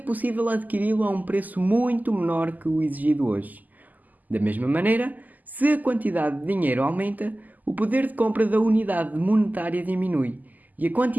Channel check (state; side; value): late; left; 0.082 ms